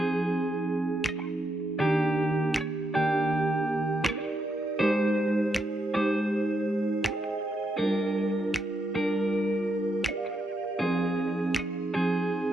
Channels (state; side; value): normal; both; correlation 0.80